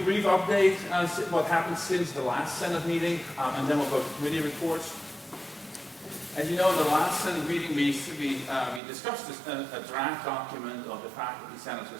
update on what happened since the last Senate meeting, and then we'll go to committee reports. As you know, in the last Senate meeting, we discussed a draft document of the Faculty Senate's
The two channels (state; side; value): drops out; left; at 8.8 s